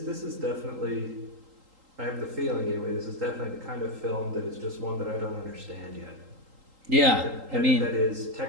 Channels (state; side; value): late; left; 3.8 ms